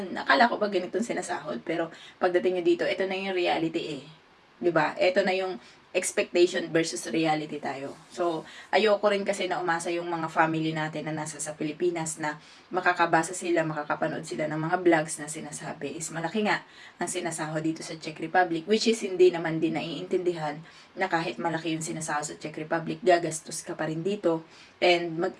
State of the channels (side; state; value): both; identical; correlation 1.00